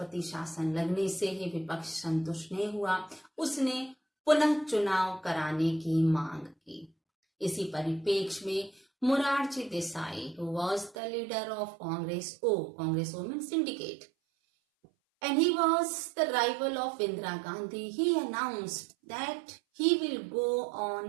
शासन लगने से ही विपक्ष संतुष्ट नहीं हुआ, उसने पुनः चुनाव कराने की मांग की। इसी परिप्रेक्ष्य में Morarji Desai, who was the leader of Congress Women Syndicate, and he was the rival of Indira Gandhi, he announced that he will go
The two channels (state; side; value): drops out; left; at 11.0 s